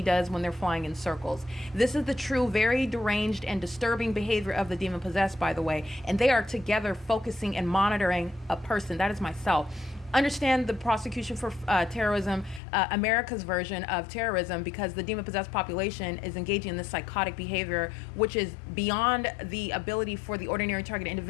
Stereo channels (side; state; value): right; drops out; at 12.6 s